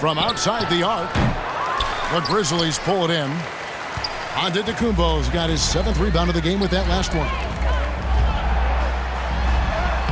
outside the arc. The Grizzlies pull it in. Antetokounmpo's got his 7th rebound of the game with that last one.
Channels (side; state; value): both; identical; correlation 1.00